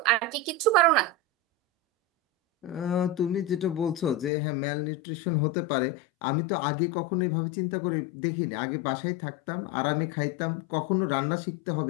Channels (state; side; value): drops out; right; at 4.3 s